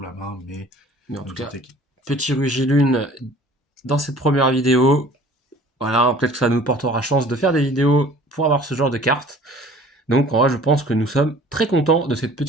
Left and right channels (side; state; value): both; normal; correlation 0.49